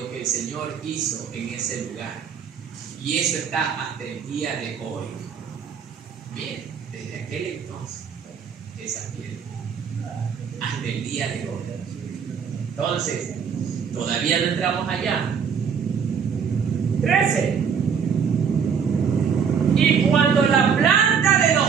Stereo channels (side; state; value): left; quieter; 6.8 dB